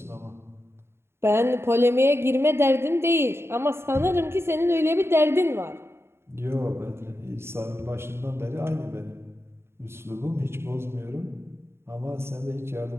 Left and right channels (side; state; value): left; late; 0.12 ms